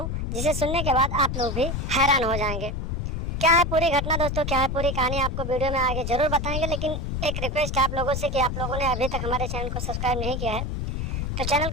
जिसे सुनने के बाद आप लोग भी हैरान हो जाएंगे। क्या है पूरी घटना दोस्तों, क्या है पूरी कहानी, आपको वीडियो में आगे जरूर बताएंगे। लेकिन एक रिक्वेस्ट है आप लोगों से कि आप लोगों ने अभी तक हमारे चैनल को सब्सक्राइब नहीं किया है तो चैनल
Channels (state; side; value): noise; left; rumble, 2 dB below the sound